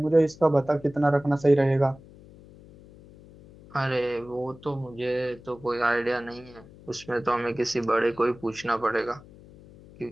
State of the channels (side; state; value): left; noise; hum, 22 dB below the sound